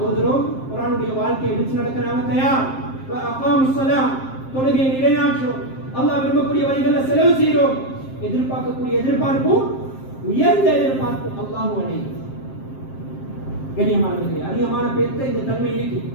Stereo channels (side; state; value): right; late; 7.6 ms